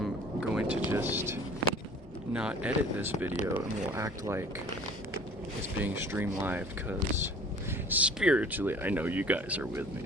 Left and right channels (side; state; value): both; normal; correlation 0.48